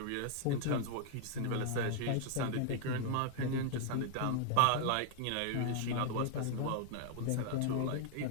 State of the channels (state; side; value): different; both; correlation 0.00